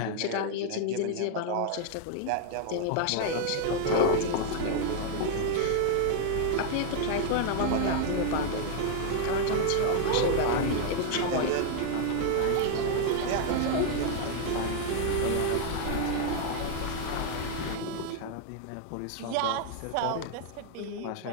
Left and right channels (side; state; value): both; different; correlation 0.00